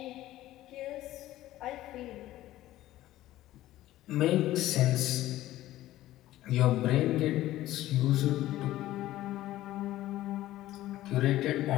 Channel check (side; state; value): right; quieter; 15.0 dB